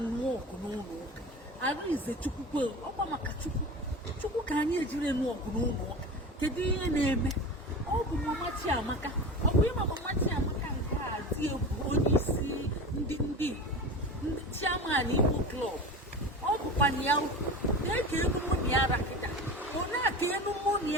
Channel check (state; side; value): normal; both; correlation 0.31